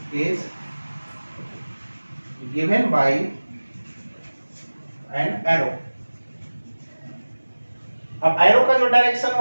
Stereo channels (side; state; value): both; inverted; correlation -1.00